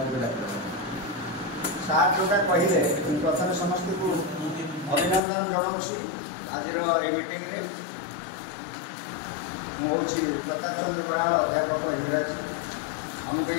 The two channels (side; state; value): right; drops out; at 5.2 s